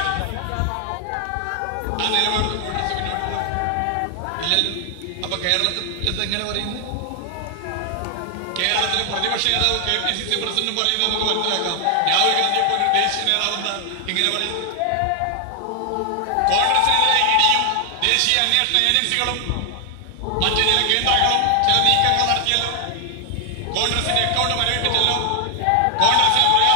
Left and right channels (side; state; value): both; different; correlation 0.00